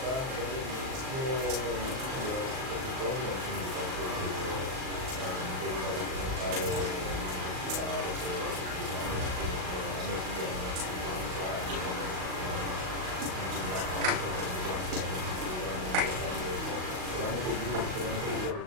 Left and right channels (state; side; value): late; left; 38 ms